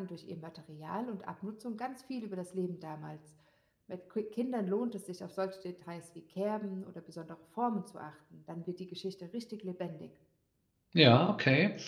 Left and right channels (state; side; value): identical; both; correlation 1.00